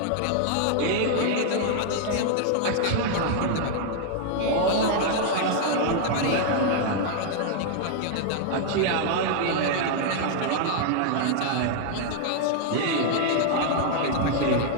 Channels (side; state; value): both; different; correlation 0.00